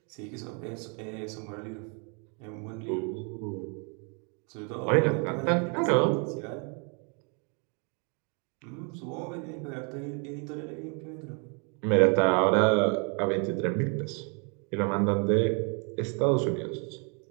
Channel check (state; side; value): quieter; left; 36.6 dB